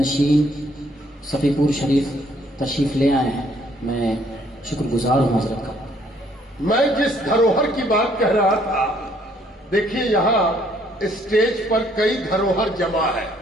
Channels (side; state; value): both; normal; correlation 0.65